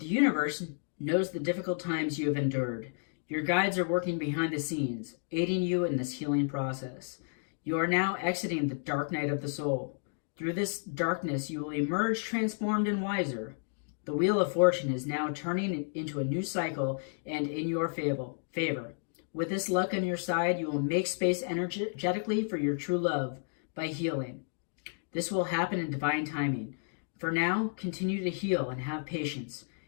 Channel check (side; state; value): right; silent; digital silence